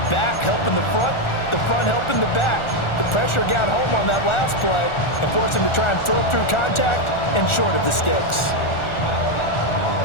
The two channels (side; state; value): right; late; 1.4 ms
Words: back helping the front helping the back. The pressure got home on that last play and forced him to try and throw through contact and short of the sticks.